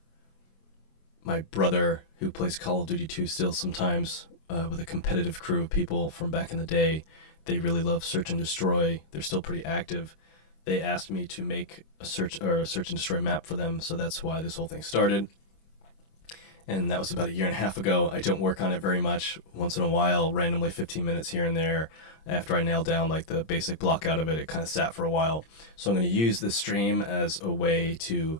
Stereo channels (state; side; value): late; right; 26 ms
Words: My brother, who plays Call of Duty 2 still sometimes, with a competitive crew of people from back in the day, they really love Search and Destroy. They're still pretty active. They asked me to make a search and destroy map for them, so that's why this whole thing started. And that was about a year and a half ago. I don't work on it very much. Once in a while, randomly 15 minutes here and there. After I nailed down like the basic block out of it, it kind of sat for a while. So I'm going to use this stream as a way to,